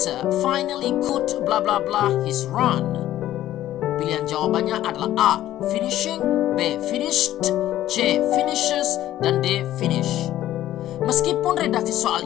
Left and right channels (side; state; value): right; quieter; 13.4 dB